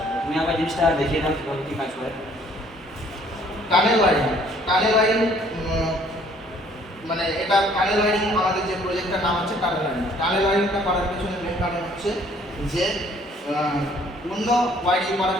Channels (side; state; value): both; normal; correlation 0.60